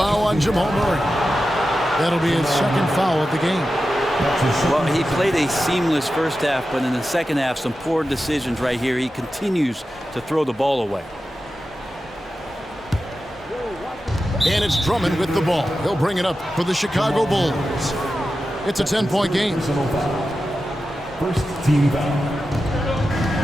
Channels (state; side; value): normal; both; correlation 0.92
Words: on Jamal Murray. That'll be his second foul of the game. Well, he played a seamless first half, but in the second half, some poor decisions right here. He continues to throw the ball away. And it's Drummond with the ball. He'll bring it up for the Chicago Bulls. It's a 10-point game. First team foul.